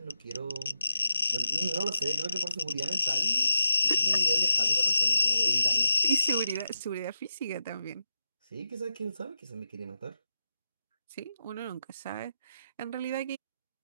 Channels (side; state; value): both; inverted; correlation -0.87